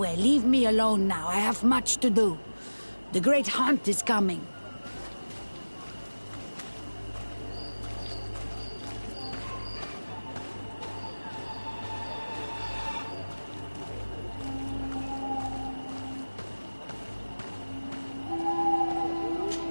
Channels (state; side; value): inverted; both; correlation -1.00